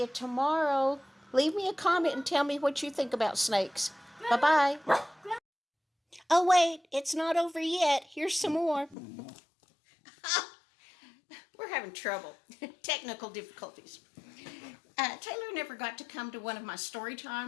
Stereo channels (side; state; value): right; drops out; at 9.0 s